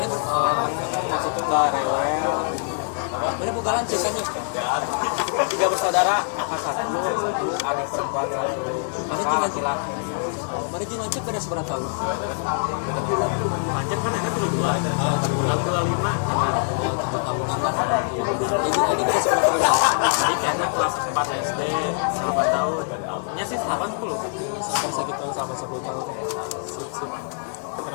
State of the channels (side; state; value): right; silent; 63 dB below the other